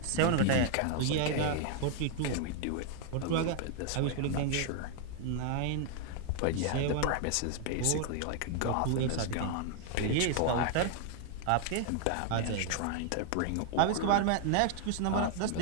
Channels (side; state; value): both; different; correlation 0.00